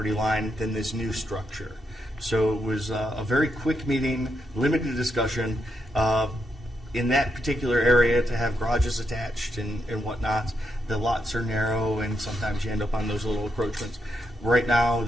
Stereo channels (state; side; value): normal; both; correlation 0.81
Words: line than this new structure. So it was a very quick meeting, limited discussion. In that particular area, to have garages attached and whatnot, the lots are narrow and sometimes you end up on those little encroachments. Right now,